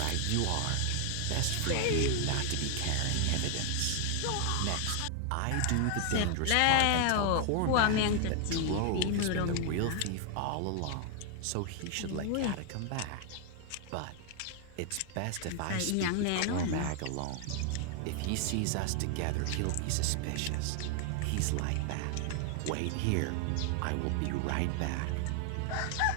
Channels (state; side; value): different; both; correlation 0.00